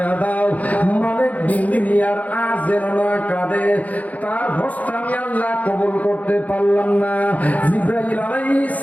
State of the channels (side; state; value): right; late; 0.074 ms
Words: দাও। মালিক বিন্দিনিয়ার আজ যেন না কাঁদে, তার হজটা আমি আল্লাহ কবুল করতে পারলাম না। জিবরাইল আলাইহিস